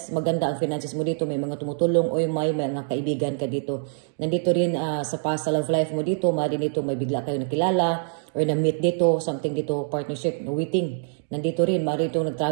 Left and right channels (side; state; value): left; silent; digital silence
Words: maganda ang finances mo dito, may mga tumutulong o may mga kaibigan ka dito. Nandito rin sa past love life mo dito, maaari dito may bigla kayo nakilala or na-meet dito, something dito, partnership, waiting. Nandito rin, maaari dito